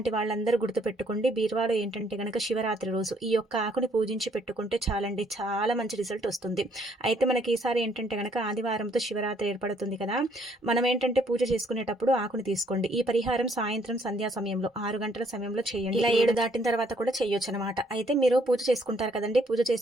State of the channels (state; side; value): normal; both; correlation 0.66